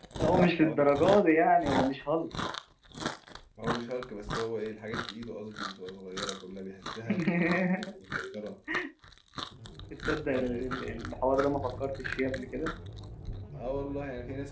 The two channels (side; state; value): both; identical; correlation 1.00